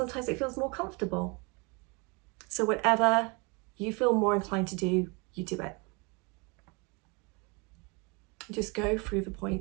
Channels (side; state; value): left; quieter; 30.1 dB